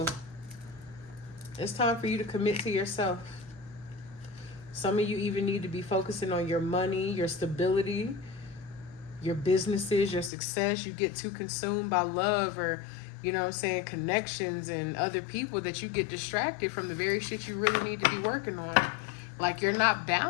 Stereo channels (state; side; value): drops out; right; at 10.3 s